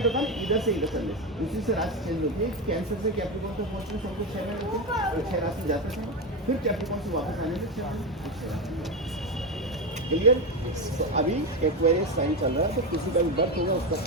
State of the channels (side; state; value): both; normal; correlation 0.14